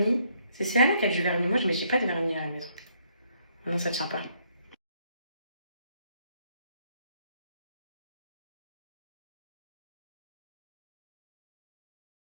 C'est Céana qui a du vernis. Moi, j'ai pas de vernis à la maison. Ah non, ça tient pas.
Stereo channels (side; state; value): both; inverted; correlation -0.70